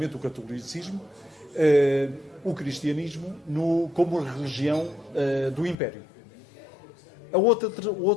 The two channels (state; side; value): drops out; right; at 5.8 s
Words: o catolicismo, o cristianismo como religião do Império. O